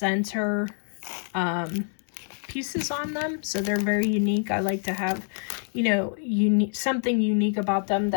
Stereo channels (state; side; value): silent; right; 61 dB below the other